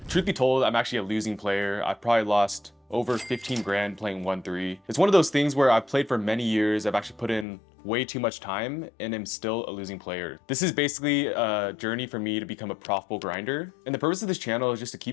Truth be told, I'm actually a losing player. I've probably lost over 15 grand playing 1-3. It's one of those things where I've played for many years, I've actually put in way too much time, and am still a losing player. This is basically a journey for me to become a profitable grinder. And the purpose of this channel is just to keep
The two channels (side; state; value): right; drops out; at 7.5 s